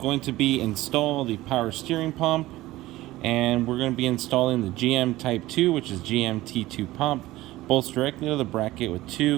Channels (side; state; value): left; quieter; 17.3 dB